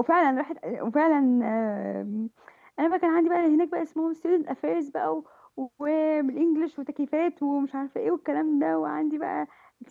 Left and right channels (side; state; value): both; identical; correlation 1.00